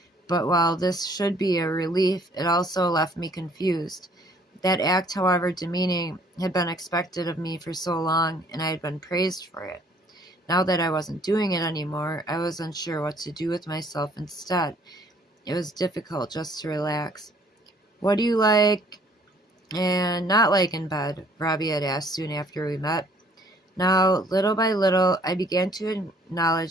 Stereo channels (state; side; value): normal; both; correlation 0.60